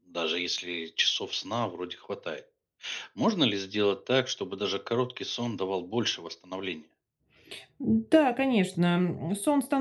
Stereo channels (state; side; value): identical; both; correlation 1.00